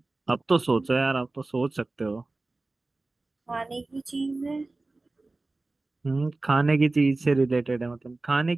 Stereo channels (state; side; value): quieter; left; 3.2 dB